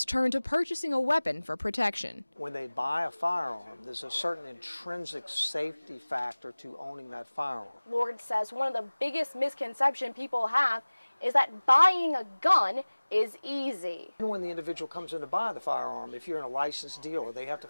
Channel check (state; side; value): inverted; both; correlation -1.00